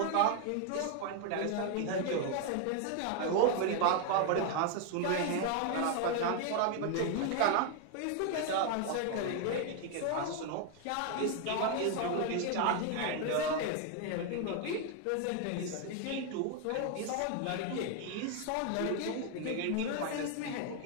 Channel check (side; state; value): both; different; correlation 0.01